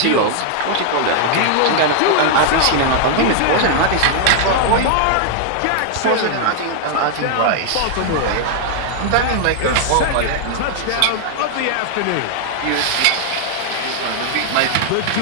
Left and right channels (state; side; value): different; both; correlation 0.00